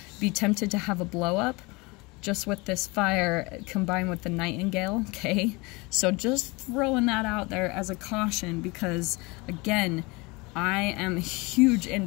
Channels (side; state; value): right; quieter; 25.5 dB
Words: be tempted to have a blow up just with this fire combined with the nightingale, okay? So just throwing that out there as a caution, because again, I am huge